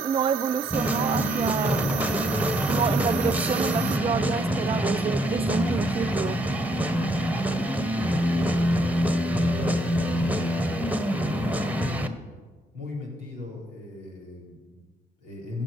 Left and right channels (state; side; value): normal; both; correlation 0.71